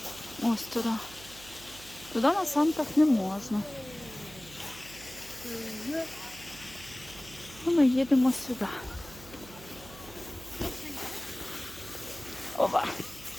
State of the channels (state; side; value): noise; right; hum, 18 dB below the sound